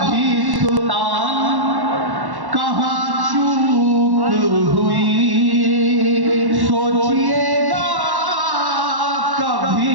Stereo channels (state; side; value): late; left; 1.1 ms